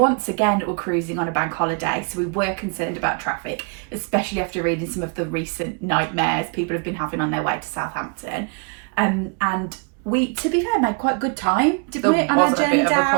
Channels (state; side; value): quieter; left; 35.6 dB